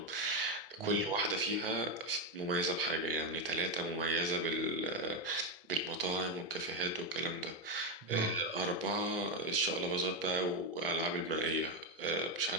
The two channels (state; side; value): normal; both; correlation 0.08